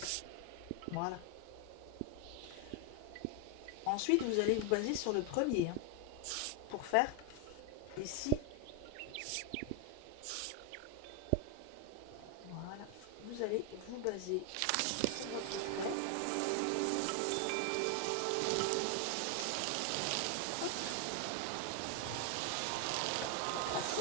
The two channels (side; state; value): both; different; correlation 0.01